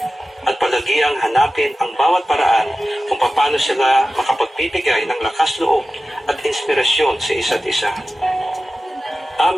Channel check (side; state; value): both; normal; correlation 0.95